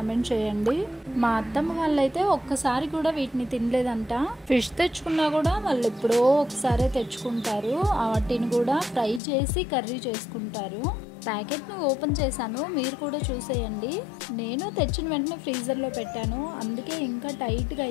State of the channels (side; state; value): right; drops out; at 9.2 s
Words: చేయండి. మా అత్తమ్మ వాళ్ళైతే ఒక్కసారి కూడా వీటిని తినలేదంట. ఫిష్ తెచ్చుకున్నా కూడా వాళ్ళు ఎప్పుడో ఒకసారి తెచ్చుకుంటారు. వాటిని కూడా ఫ్రై చేసి కర్రీ చేసుకుంటారు. ప్యాకెట్ను ఓపెన్ చేశాను, మీరు కూడా చూసేయండి. నేను తెచ్చిన వెంటనే ఫ్రీజర్లో పెట్టాను, అందుకే ఇంకా టైట్గా